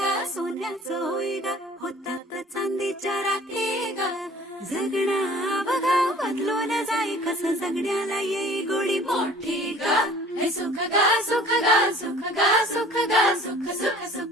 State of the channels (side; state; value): both; normal; correlation 0.49